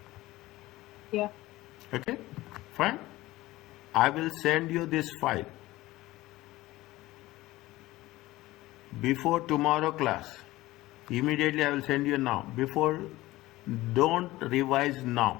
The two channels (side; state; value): right; quieter; 17.9 dB